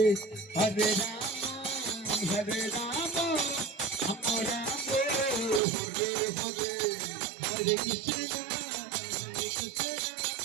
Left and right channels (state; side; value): drops out; left; at 5.6 s